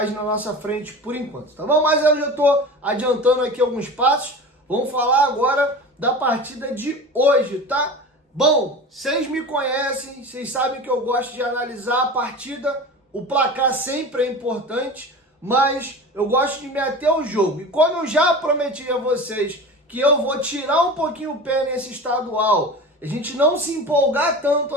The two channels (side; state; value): both; normal; correlation 0.33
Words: na nossa frente por enquanto, tá bom? Mas eu já estou adiantando aqui alguns passos. Vamos falar agora da partida de hoje, tá? Bom, vocês me conhecem, vocês sabem que eu gosto de analisar a partida. O placar sempre é importante, mas eu gosto de me ater ao jogo. E quando eu já prometi a vocês que eu vou tirar um pouquinho o pé nesse estadual, a gente não se empolgar tanto